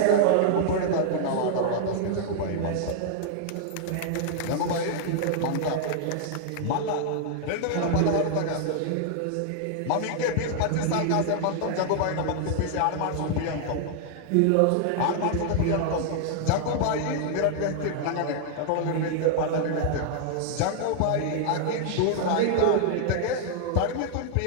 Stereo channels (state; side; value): different; both; correlation -0.01